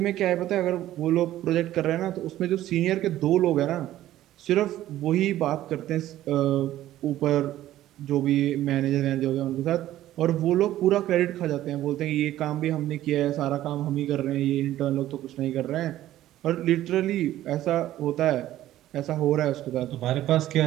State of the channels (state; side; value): quieter; left; 13.8 dB